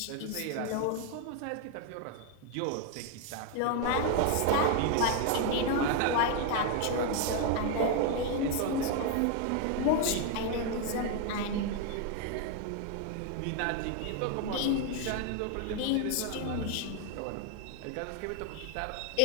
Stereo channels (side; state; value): both; different; correlation 0.01